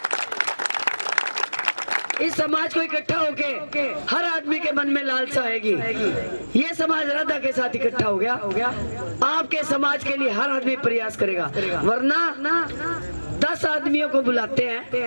इस समाज को इकट्ठा होके हर आदमी के मन में लालसा आएगी। ये समाज राधा के साथ इकट्ठा हो गया, आपके समाज के लिए हर आदमी प्रयास करेगा। वरना 10 आदमियों को बुलाते हैं,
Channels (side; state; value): both; inverted; correlation -1.00